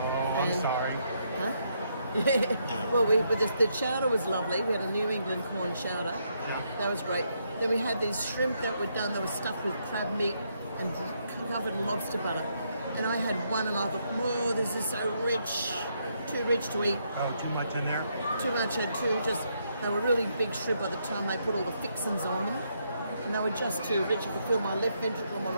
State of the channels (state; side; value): inverted; both; correlation -0.76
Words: I'm sorry. Huh? Yeah. Well, the chowder was lovely. We had a New England corn chowder. Yeah. That was great. Then we had these shrimp that were done. They were stuffed with crab meat and covered in lobster butter. And I had one, and I thought, whoa, this is so rich. Too rich to eat. Oh, too much in there? Too much, and they were really big shrimp by the time they put all the fixings on them. And they were just too rich. I could feel my left ventricle and my